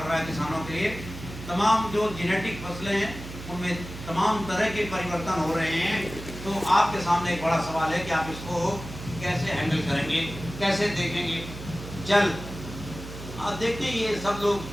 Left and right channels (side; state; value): right; noise; hum, 11 dB below the sound